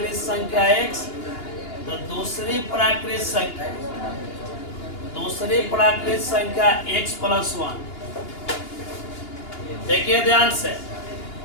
संख्या x, तो दूसरी प्राकृत संख्या x प्लस 1। देखिए ध्यान से,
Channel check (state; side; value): late; right; 2.8 ms